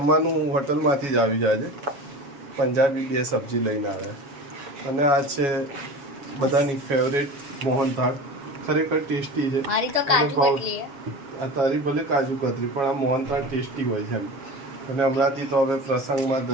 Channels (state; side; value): late; left; 7.3 ms